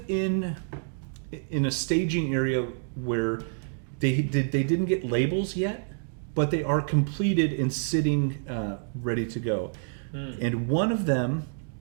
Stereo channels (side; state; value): left; silent; digital silence